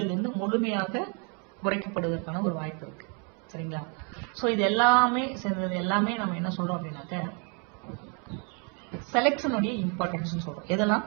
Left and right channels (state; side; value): quieter; left; 37.0 dB